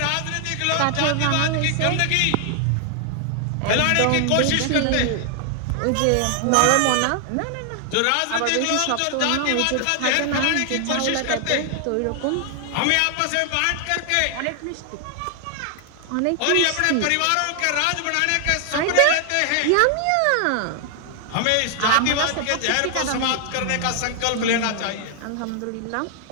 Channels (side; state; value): both; different; correlation 0.00